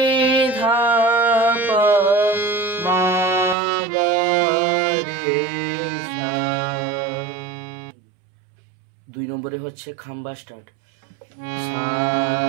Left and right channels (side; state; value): left; drops out; at 3.6 s